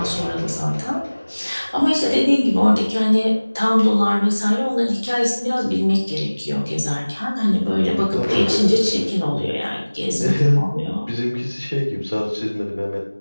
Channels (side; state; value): both; inverted; correlation -1.00